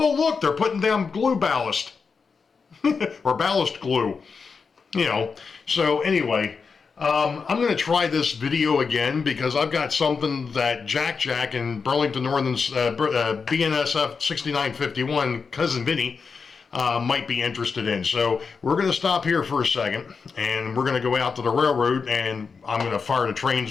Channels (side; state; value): right; quieter; 5.3 dB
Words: look, they're putting down glue ballast. Or ballast glue. So anyway, I'm going to try this video again because I've got something that Jack and Burlington Northern's BNSF 6951, Cousin Vinny, might be interested in. So we're going to stop here for a second, and we're going to go out to the railroad, and I'm going to fire the trains